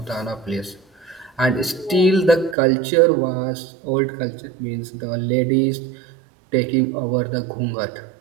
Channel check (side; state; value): left; drops out; at 2.6 s